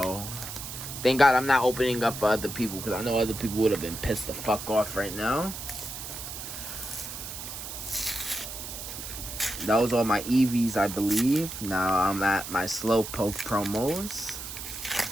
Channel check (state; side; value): noise; right; hiss, 8 dB below the sound